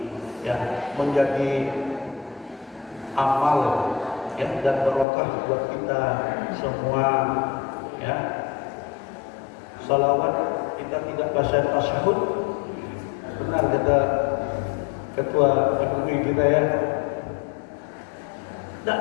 ya, menjadi amal ya dan barokah buat kita semua ya. Salawat kita tidak baca tasyahud, benar kata ketua MUI kita ya, tidak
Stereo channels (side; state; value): right; drops out; at 5.1 s